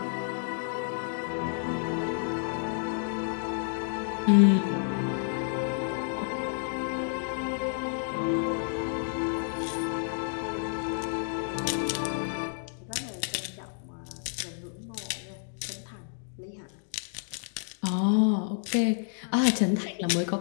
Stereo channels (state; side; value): silent; right; 56 dB below the other